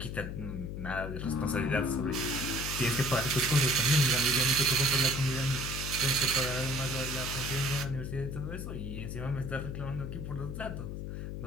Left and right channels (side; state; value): left; noise; hum, 6 dB below the sound